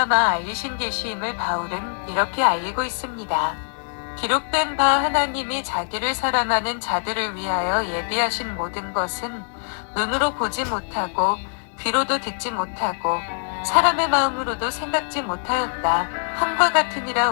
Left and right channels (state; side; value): silent; right; digital silence